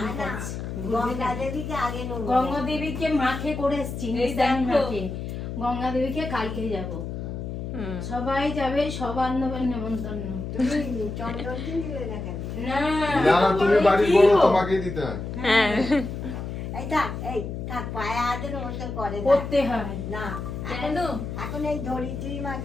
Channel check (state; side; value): noise; left; hum, 6 dB below the sound